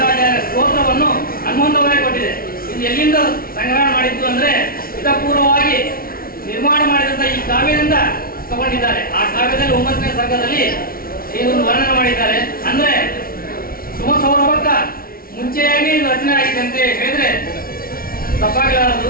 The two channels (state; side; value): late; right; 0.43 ms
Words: ಸ್ತೋತ್ರವನ್ನು ಹನುಮಂತವಾಗಿ ಕೊಟ್ಟಿದೆ. ಇದು ಎಲ್ಲಿಂದ ಸಂಗ್ರಹಣ ಮಾಡಿದ್ದು ಅಂದ್ರೆ ಹಿತಪೂರ್ವವಾಗಿ ನಿರ್ಮಾಣ ಮಾಡಿದಂತ ಈ ಕಾವ್ಯದಿಂದ ತಗೊಂಡಿದ್ದಾರೆ. ಆ ಕಾವ್ಯದಲ್ಲಿ 9ನೇ ಸರ್ಗದಲ್ಲಿ ಇದನ್ನು ವರ್ಣನೆ ಮಾಡಿದ್ದಾರೆ. ಅಂದ್ರೆ ಸುಮಸೌರಭಕ್ಕ ಮುಂಚೆಯಾಗಿ ಇದು ರಚನೆ ಆಗಿದೆ ಅಂತ ಹೇಳಿದ್ರೆ ತಪ್ಪಾಗಲಾರದು.